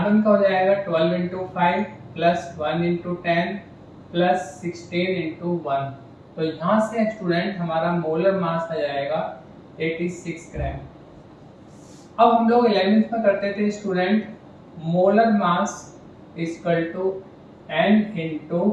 का हो जाएगा 12 into 5 plus 1 into 10 plus 16 into 1। तो यहाँ से स्टूडेंट हमारा मोलर मास आ जाएगा 86 ग्राम। अब हम लोग 11th में करते थे student molar mass equal to n into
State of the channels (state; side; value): identical; both; correlation 1.00